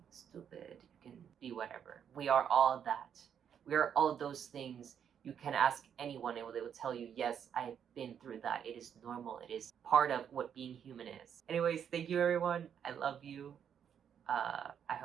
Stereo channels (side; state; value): left; quieter; 8.4 dB